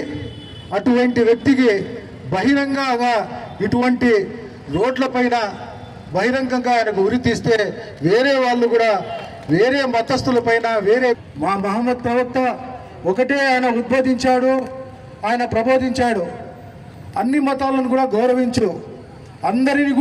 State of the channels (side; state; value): both; identical; correlation 1.00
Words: అటువంటి వ్యక్తికి బహిరంగంగా ఇటువంటి రోడ్లపైన బహిరంగంగా ఆయనకు ఉరి తీస్తే వేరే వాళ్ళు కూడా, వేరే మతస్థులపైన, వేరే మా మహమ్మద్ ప్రవక్త ఒకటే ఆయన ఉద్బోధించాడు, ఆయన ప్రబోధించాడు, అన్ని మతాలను కూడా గౌరవించు, అందరిని